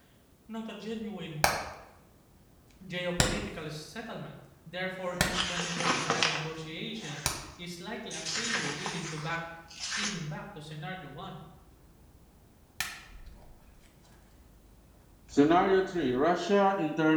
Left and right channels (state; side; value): identical; both; correlation 1.00